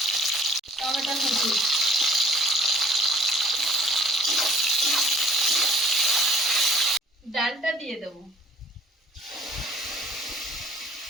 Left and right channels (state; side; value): normal; both; correlation 0.55